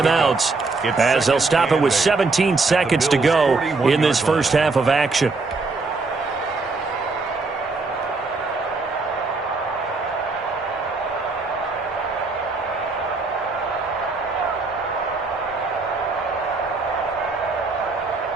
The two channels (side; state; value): left; quieter; 3.8 dB